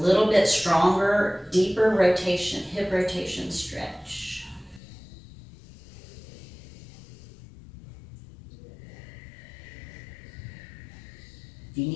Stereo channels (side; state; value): right; drops out; at 4.8 s